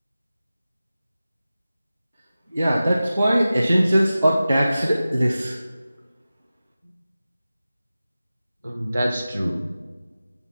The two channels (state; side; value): inverted; both; correlation -0.95